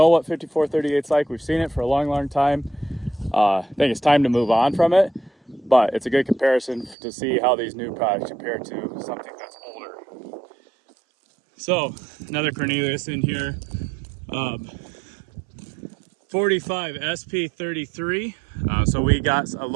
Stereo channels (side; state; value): left; drops out; at 7.0 s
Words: what 5438's like. We've seen it for a long time. I think it's time to move on from it, but it's a good comparison to see how these new products compare to something that's older. So another Cornelius in here. 45 SP33. So we got a